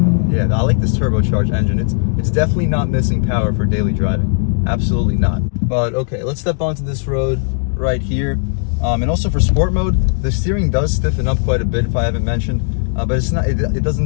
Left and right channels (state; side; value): silent; right; digital silence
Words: yeah, I like this turbocharged engine. It's definitely not missing power for daily driving, absolutely not. But okay, let's step onto this road right here. And also for sport mode, the steering does stiffen up quite a bit, if I haven't mentioned, but it's not. It